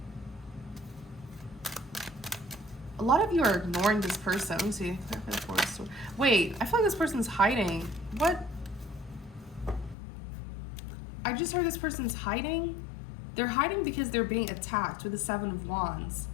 A lot of you are ignoring this person. Let me see. Wait, I feel like this person's hiding. What? I just heard this person's hiding. They're hiding because they're being attacked with the Seven of Wands.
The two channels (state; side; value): drops out; right; at 10.0 s